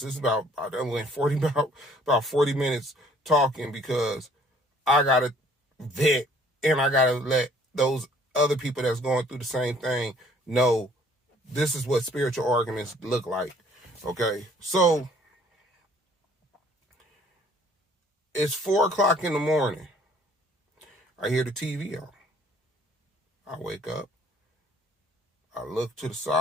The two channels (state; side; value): normal; both; correlation 0.59